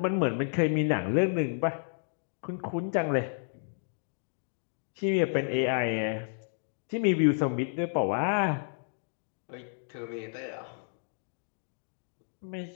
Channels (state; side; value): silent; right; digital silence